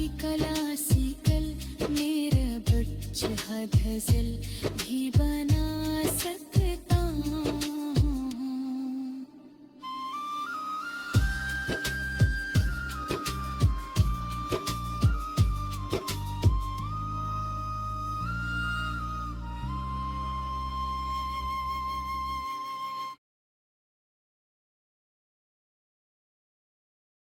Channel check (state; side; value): identical; both; correlation 1.00